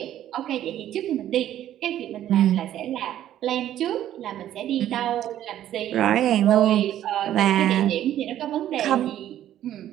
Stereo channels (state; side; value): quieter; left; 11.9 dB